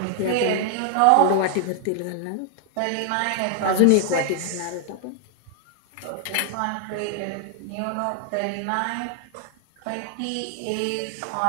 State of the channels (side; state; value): both; different; correlation 0.00